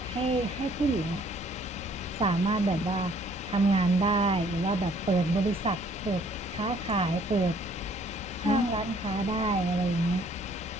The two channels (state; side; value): normal; both; correlation 0.61